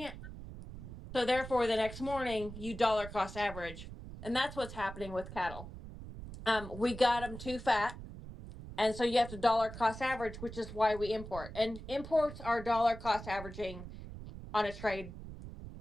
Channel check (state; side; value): noise; right; rumble, 12 dB below the sound